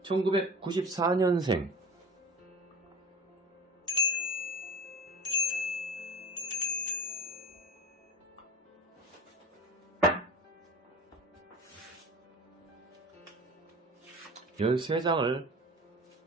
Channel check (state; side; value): normal; both; correlation 0.36